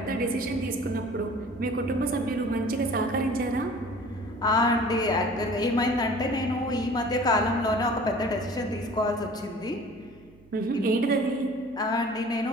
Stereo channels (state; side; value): noise; right; hum, 27 dB below the sound